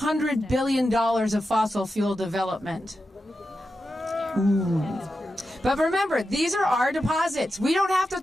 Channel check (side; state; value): both; normal; correlation 0.90